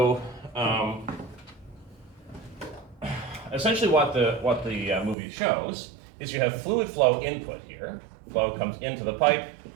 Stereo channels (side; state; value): left; drops out; at 5.2 s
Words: essentially, what the movie shows is you have fluid flow input here. Flow comes into the pipe,